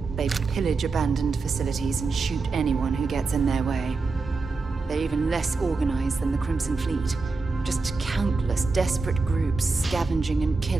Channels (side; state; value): left; quieter; 4.0 dB